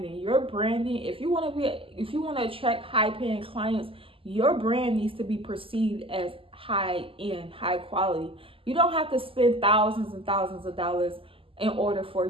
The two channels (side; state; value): left; late; 0.26 ms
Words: Your branding, if you want to attract high paying clients, your brand needs to be perceived as high end, high quality. You don't have to spend thousands and thousands of dollars in order for